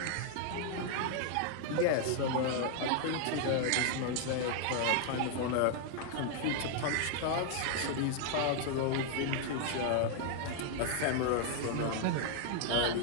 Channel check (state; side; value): different; both; correlation 0.00